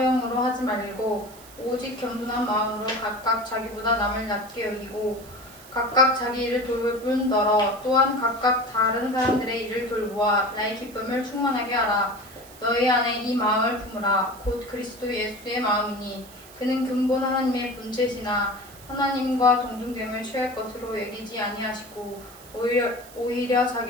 하지 말고 오직 겸손한 마음으로 각각 자기보다 남을 낮게 여기고 각각 자기 일을 돌볼 뿐더러 또한 각각 다른 사람들의 일을 돌보아 나의 기쁨을 충만하게 하라. 너희 안에 이 마음을 품으라. 곧 그리스도 예수의 마음이니 그는 근본 하나님의 본체시나 하나님과 동등됨을 취할 것으로 여기지 아니하시고 오히려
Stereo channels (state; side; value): noise; right; hiss, 20 dB below the sound